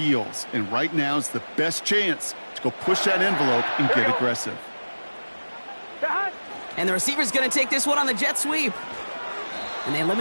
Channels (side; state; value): both; inverted; correlation -1.00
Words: And right now is the best chance to go push that envelope and get aggressive. And the receiver's going to take this one on the jet sweep. And they